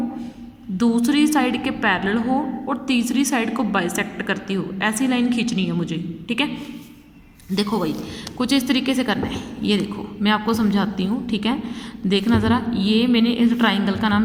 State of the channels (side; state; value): both; identical; correlation 1.00